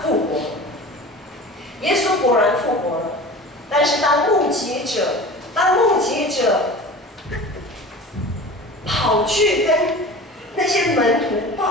复活了。耶稣果然复活了，但是当目击者跑去跟那些门徒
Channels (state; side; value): normal; both; correlation 0.37